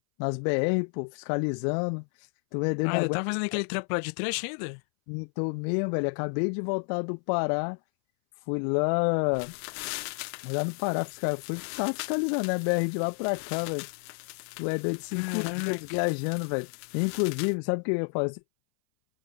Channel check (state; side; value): silent; right; 58 dB below the other